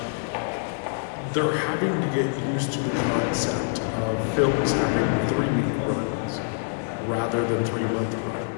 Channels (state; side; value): silent; right; digital silence